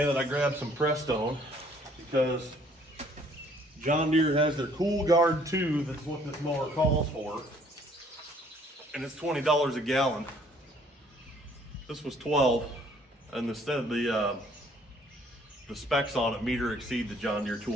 that I grabbed some Prestone because John Deere has their Cool Guard 2, that's what this mower calls for, and it's $20 a gallon. This was $12, and instead the specs on it meter exceed the John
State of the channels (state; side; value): normal; both; correlation 0.61